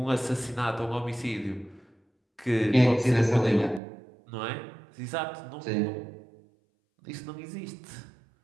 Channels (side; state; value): left; drops out; at 3.8 s